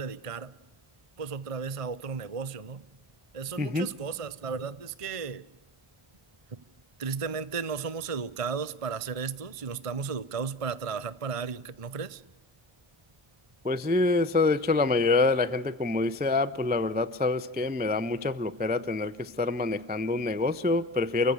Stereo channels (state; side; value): late; left; 1.5 ms